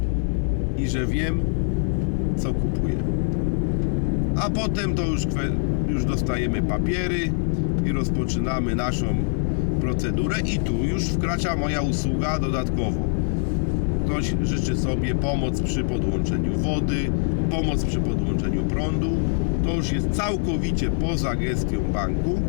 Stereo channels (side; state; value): right; silent; 63 dB below the other